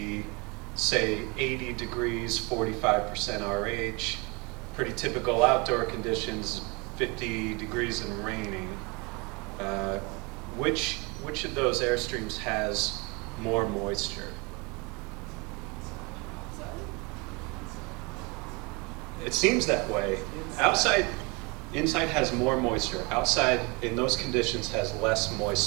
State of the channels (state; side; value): quieter; left; 28.7 dB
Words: say, 80 degrees, 45% RH. Pretty typical outdoor conditions, 50 degrees and raining. Which of those airstreams has more moisture? It seems that way. Inside has more moisture. Outside, in those conditions, has less